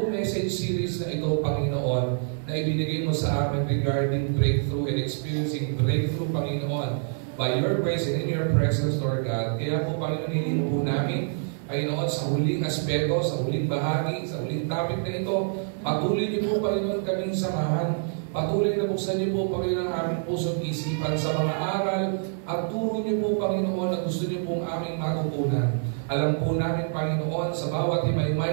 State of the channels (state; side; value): silent; left; 61 dB below the other